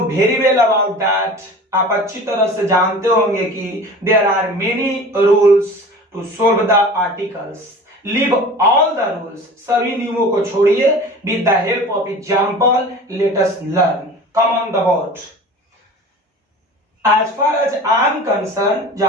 very well about that. आप अच्छी तरह से जानते होंगे कि there are many rules to solve the articles. Leave all the rules. सभी नियमों को छोड़िए. With the help of example, let us learn. Come on the board. As far as I am concerned,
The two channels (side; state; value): both; normal; correlation 0.39